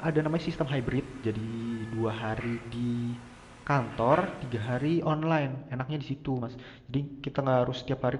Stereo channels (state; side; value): identical; both; correlation 1.00